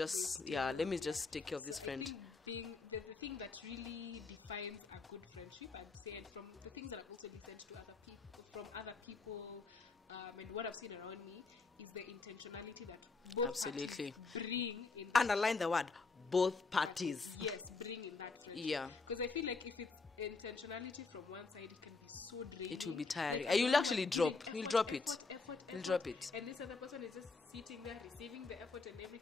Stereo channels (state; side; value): quieter; right; 4.1 dB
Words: take care of this friend. So I think being the thing that really defines a good friendship, I'd say, and from the things that I've also listened to other people, and what I've seen around me, is the intentionality that both parties bring in that. Underline the word. Both parties. Yes, bring in that friendship. Because I feel like if it's intentionality from one side, it can be so draining. Like I'm the only one giving effort, and this other person is just sitting there receiving the effort and